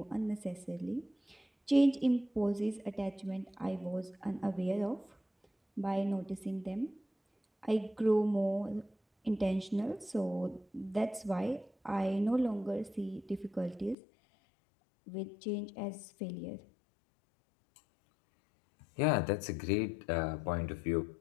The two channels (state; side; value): drops out; right; at 14.0 s